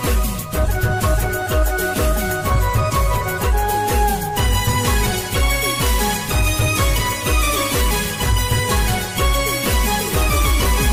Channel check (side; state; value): both; identical; correlation 1.00